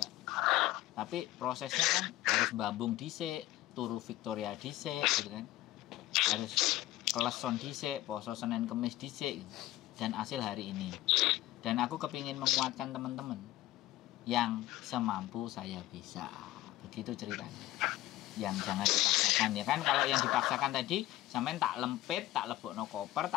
Tapi prosesnya kan harus bambung dhisik, turu Victoria dhisik gitu kan. Harus keleson dhisik, poso Senin Kemis dhisik gitu. Dan hasil hari ini. Dan aku kepingin menguatkan teman-teman yang semampu saya bisa. Begitu ceritanya. Yang jangan dipaksakan ya kan. Kalau yang dipaksakan tadi sampean tak lempit, tak lebokno koper,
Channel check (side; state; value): right; quieter; 16.1 dB